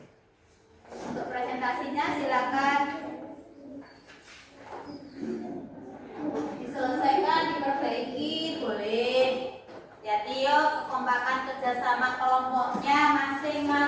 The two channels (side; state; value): both; identical; correlation 1.00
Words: untuk presentasinya, silakan diselesaikan, diperbaiki, boleh. Hati-hati yuk, kekompakan kerjasama kelompoknya